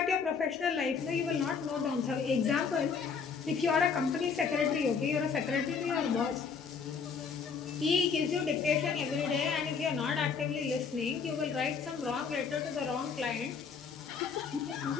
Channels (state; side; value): quieter; right; 5.8 dB